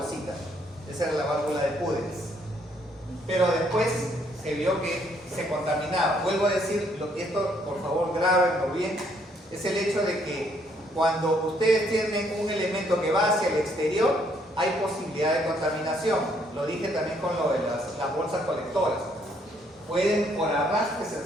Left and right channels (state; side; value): normal; both; correlation 0.68